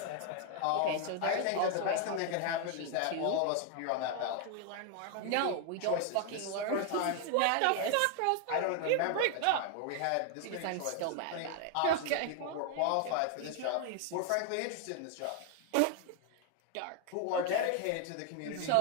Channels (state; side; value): different; both; correlation 0.01